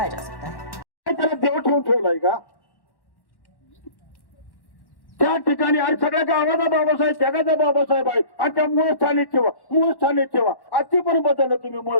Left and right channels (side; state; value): right; late; 1.1 ms